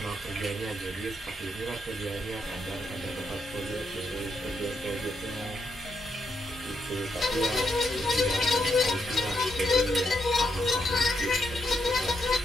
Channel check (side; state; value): both; normal; correlation 0.79